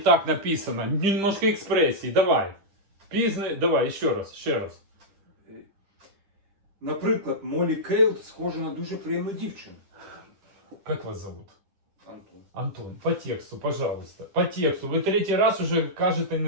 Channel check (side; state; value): left; late; 10 ms